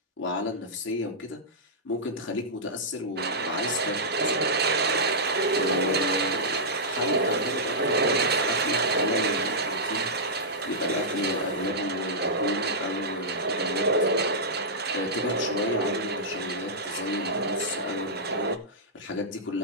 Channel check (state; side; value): normal; both; correlation -0.12